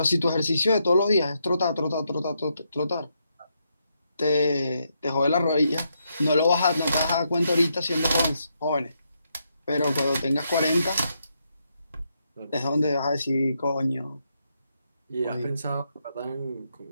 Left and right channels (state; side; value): inverted; both; correlation -0.80